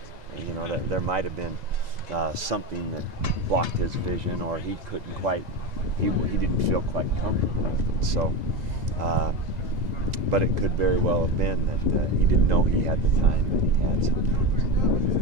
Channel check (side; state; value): left; late; 2.0 ms